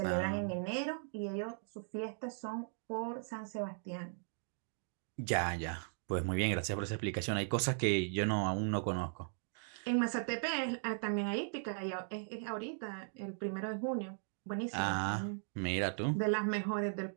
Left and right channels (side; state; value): left; silent; digital silence